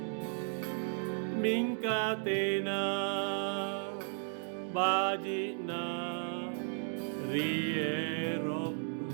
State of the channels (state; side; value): silent; left; 55 dB below the other